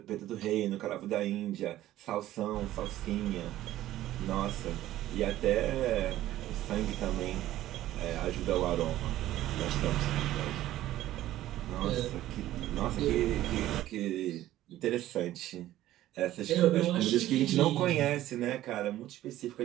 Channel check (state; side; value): quieter; left; 14.2 dB